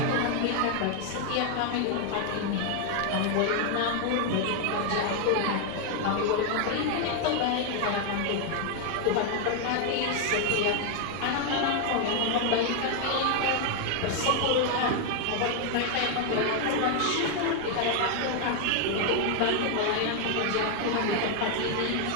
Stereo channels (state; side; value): different; both; correlation 0.00